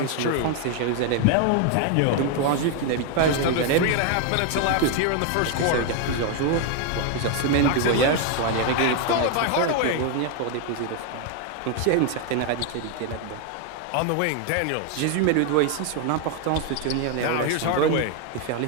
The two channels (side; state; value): both; different; correlation 0.01